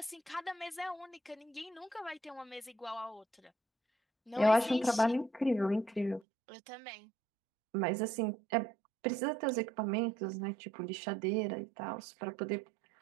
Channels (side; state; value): left; drops out; at 6.2 s